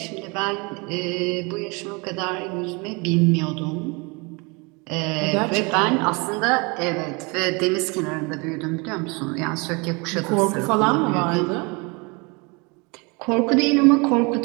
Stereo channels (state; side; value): quieter; left; 28.9 dB